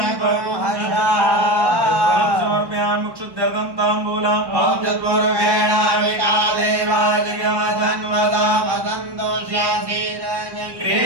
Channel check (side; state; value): left; late; 1.1 ms